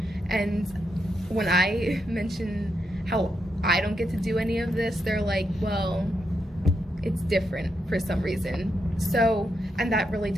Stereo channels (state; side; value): normal; both; correlation 0.83